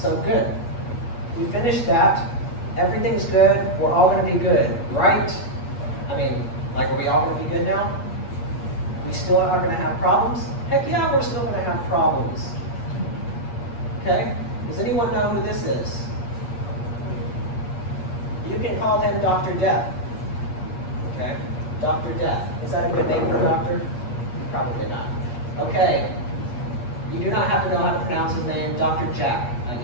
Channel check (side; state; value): right; late; 8.4 ms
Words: good. We finished that. Everything's good. We're all going to be good, right? I mean, like, are we all going to be good now? We still are going to have problems? Heck yeah, we're still going to have problems. Okay? Does anyone know who this is? You can call him Dr. Death. Okay? Dr. Death. Is that a good name for a doctor? Probably not. Okay. You do not have to know how to pronounce his name. Dr. Jack, I